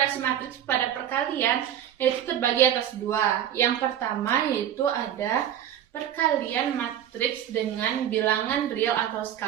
pada perkalian yaitu terbagi atas dua. Yang pertama yaitu ada perkalian matriks dengan bilangan real atau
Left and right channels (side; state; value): left; quieter; 10.5 dB